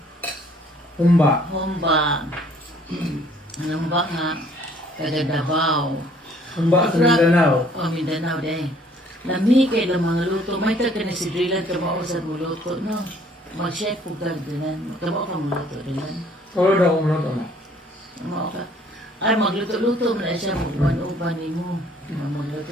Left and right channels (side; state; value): both; normal; correlation 0.59